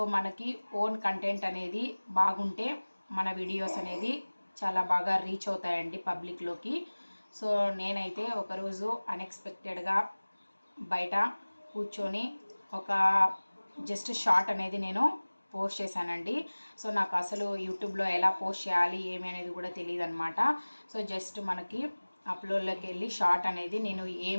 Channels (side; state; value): both; inverted; correlation -1.00